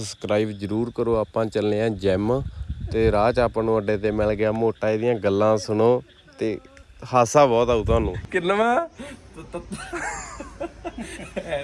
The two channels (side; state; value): both; identical; correlation 1.00